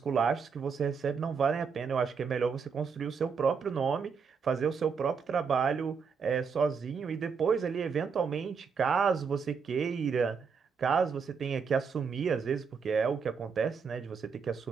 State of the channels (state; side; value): quieter; left; 5.8 dB